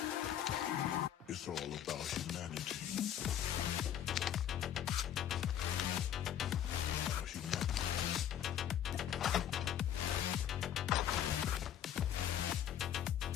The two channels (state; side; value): quieter; right; 10.3 dB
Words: It's all about humanity.